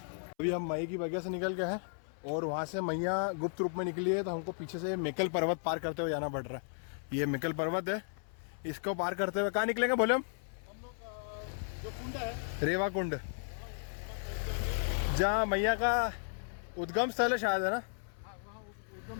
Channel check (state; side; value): silent; right; 55 dB below the other